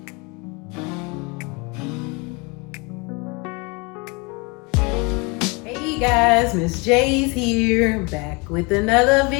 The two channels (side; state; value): right; quieter; 29.0 dB